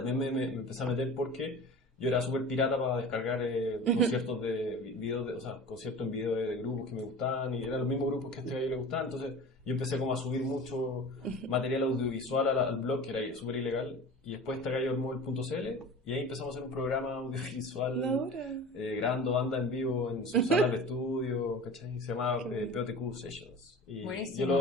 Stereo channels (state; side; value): normal; both; correlation 0.37